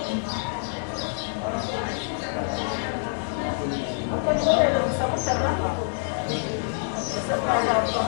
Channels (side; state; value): right; silent; digital silence